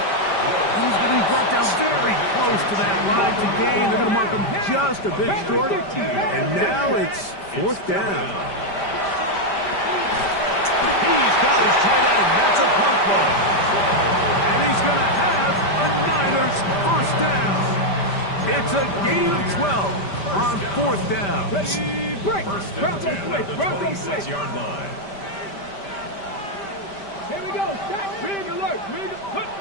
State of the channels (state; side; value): late; right; 5.1 ms